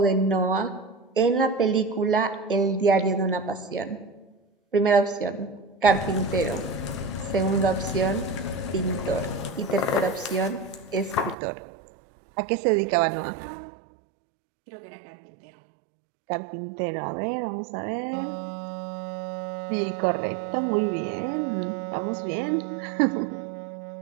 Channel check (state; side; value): drops out; left; at 11.4 s